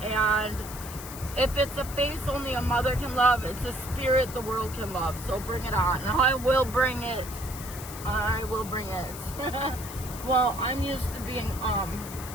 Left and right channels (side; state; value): left; noise; hiss, 12 dB below the sound